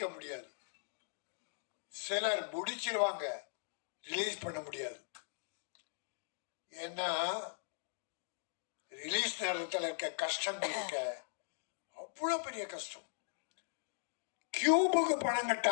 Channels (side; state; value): right; silent; digital silence